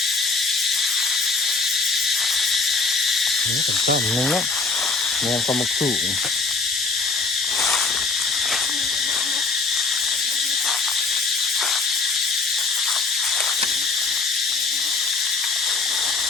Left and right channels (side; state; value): right; quieter; 3.9 dB